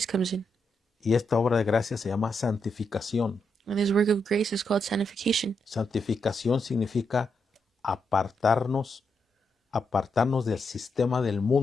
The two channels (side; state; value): both; normal; correlation 0.82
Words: comes in. Y esta obra de gracia se llama santificación. And this work of grace is called sanctification. Santificación significa apartarnos del sistema del